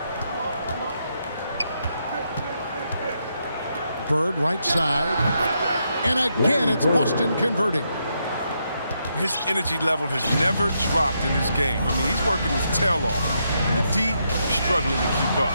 Bird right side. And again, it's Boston converting. His energy level has never dropped in his game. I mean, he's working his tail off. And the D struggling to keep up.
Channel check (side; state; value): both; inverted; correlation -0.80